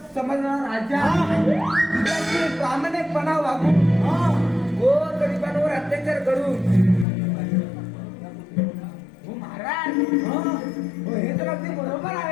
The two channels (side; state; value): right; drops out; at 7.1 s